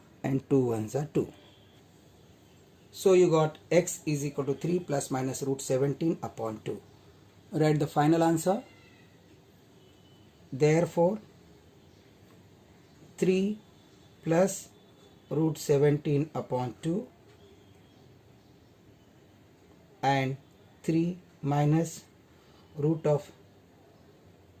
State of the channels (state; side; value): identical; both; correlation 1.00